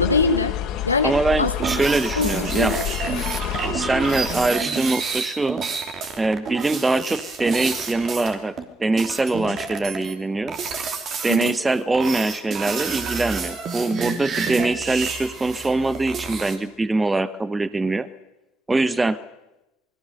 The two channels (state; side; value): normal; both; correlation 0.70